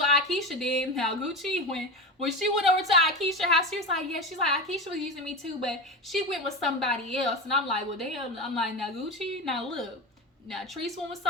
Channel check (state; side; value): normal; both; correlation 0.23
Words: Akeisha did. Now, Gucci, when she went over to Akeisha's house, she was like, yeah, she's like, Akeisha was using me too, but she went with somebody else. And I'm like, well, damn. I'm like, now, Gucci, now look. Now, Treese went with